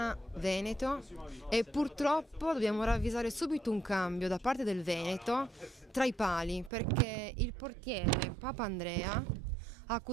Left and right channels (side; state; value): left; drops out; at 6.7 s